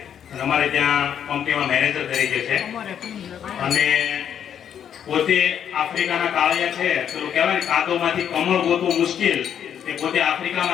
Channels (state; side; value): quieter; right; 8.9 dB